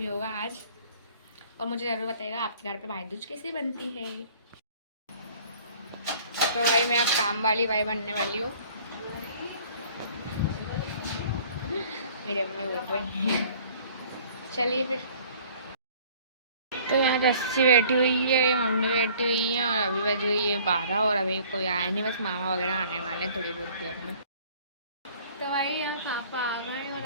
होगा आज। और मुझे ज़रूर बताइएगा आपके घर पे भाई दूज कैसी बनती है। तो भाई मैं अब काम वाली भाई बनने वाली हूँ। मेरी अम्मी बोल रही है चलिए फिर। तो यहाँ रस्सी बैठी हुई है, मम्मी बैठी हुई है और अभी बज गई है 12 और अभी कोई आया नहीं, बस मामा वगैरह आने वाले हैं थोड़ी बहुत देर में। तो भाई यहाँ पापा आ गए और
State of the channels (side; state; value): both; inverted; correlation -0.53